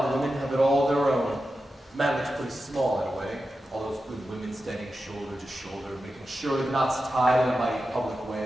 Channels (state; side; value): normal; both; correlation 0.91